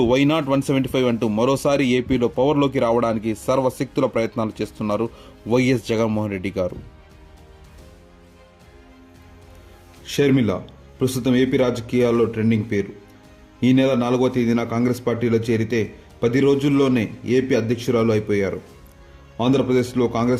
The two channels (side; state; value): both; identical; correlation 1.00